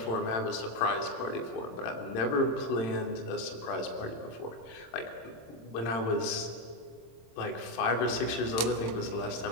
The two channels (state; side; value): late; right; 26 ms